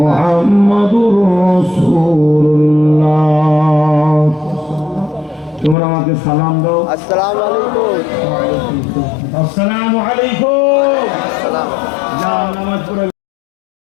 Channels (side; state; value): right; drops out; at 5.8 s